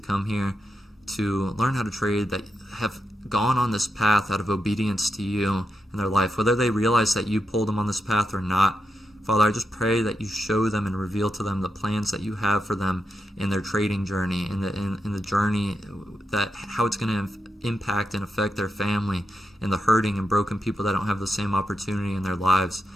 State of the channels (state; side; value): normal; both; correlation 0.85